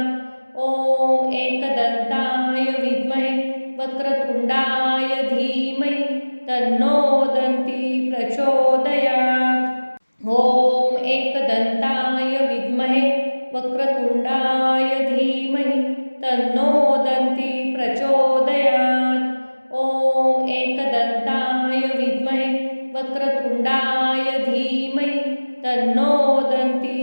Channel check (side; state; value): both; inverted; correlation -1.00